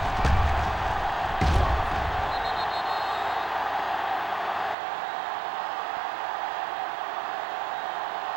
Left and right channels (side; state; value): left; drops out; at 4.8 s